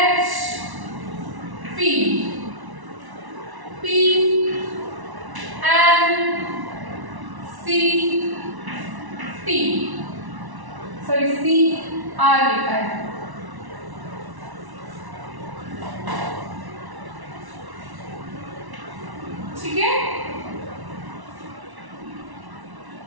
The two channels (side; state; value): left; late; 1.1 ms